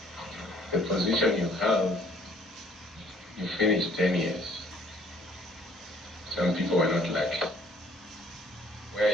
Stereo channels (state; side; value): normal; both; correlation 0.59